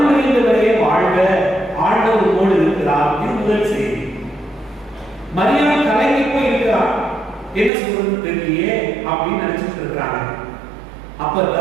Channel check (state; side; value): drops out; left; at 7.7 s